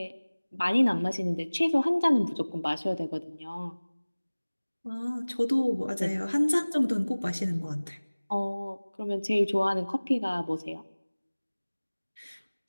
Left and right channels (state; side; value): inverted; both; correlation -1.00